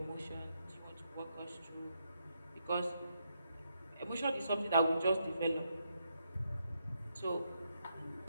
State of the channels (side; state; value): both; inverted; correlation -0.79